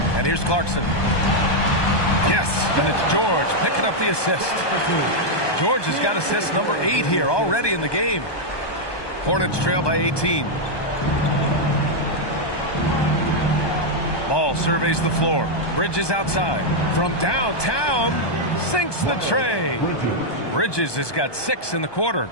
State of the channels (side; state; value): right; late; 1.2 ms